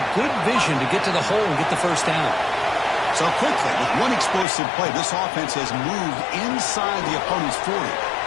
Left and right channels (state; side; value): drops out; right; at 4.5 s